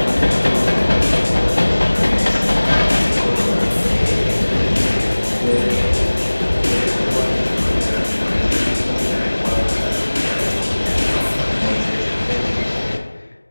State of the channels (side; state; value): both; inverted; correlation -1.00